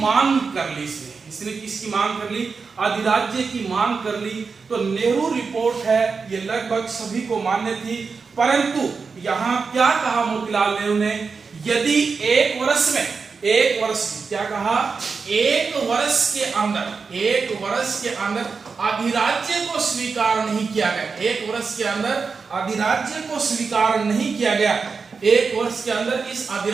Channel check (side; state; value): left; quieter; 5.0 dB